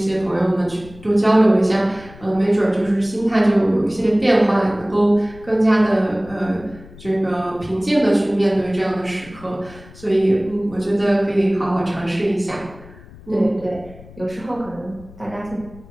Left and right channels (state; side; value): noise; left; rumble, 20 dB below the sound